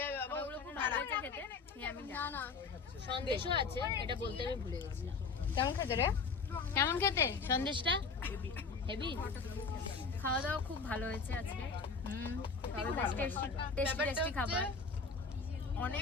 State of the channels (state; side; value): quieter; right; 4.8 dB